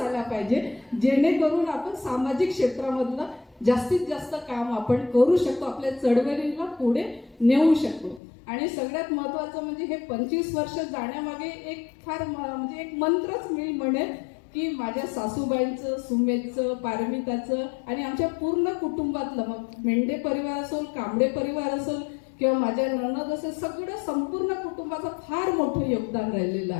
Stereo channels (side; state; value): right; drops out; at 8.2 s